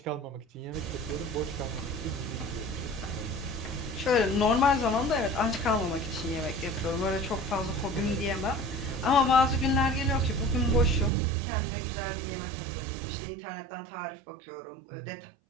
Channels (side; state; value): left; drops out; at 11.1 s